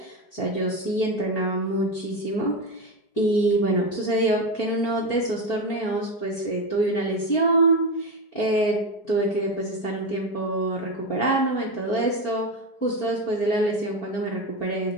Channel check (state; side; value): late; right; 4.5 ms